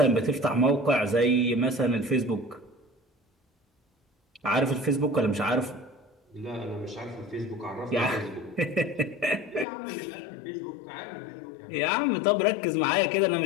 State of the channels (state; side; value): drops out; right; at 9.7 s